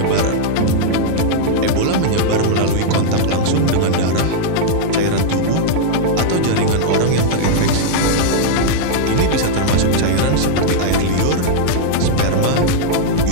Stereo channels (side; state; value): both; different; correlation -0.01